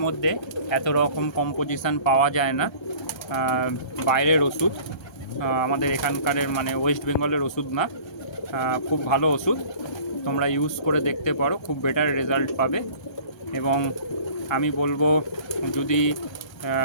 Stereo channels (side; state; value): right; late; 1.3 ms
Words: মধ্যে এত রকম কম্পোজিশান পাওয়া যায় না। বাইরের ওষুধ, আমাদের এখানকার ওয়েস্ট বেঙ্গলের ওষুধ না। খুব ভালো ওষুধ, তোমরা ইউজ করে দেখতে পারো, খুব বেটার রেজাল্ট পাবে। এবং আমি বলবো, যদি